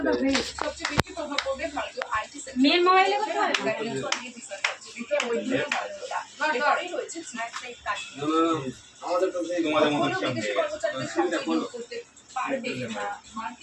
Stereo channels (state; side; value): identical; both; correlation 1.00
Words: মেয়ের মোবাইলে কথা হয়। আমাদের তো সেই তোমাদের মতো হ্যাপি